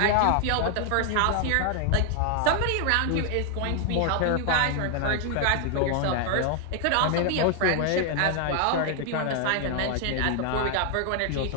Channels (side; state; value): both; different; correlation 0.00